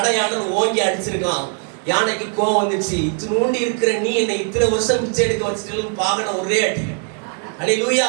ஓங்கி அடிச்சிருக்கான். யானைக்கு கோவம் வந்துச்சு, இத்தினூண்டி இருக்கிற நீ என்னை இத்தனை வருஷம் பிச்சை எடுக்க வச்சுட்டு பாகன ஒரே அடி.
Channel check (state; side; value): quieter; left; 39.7 dB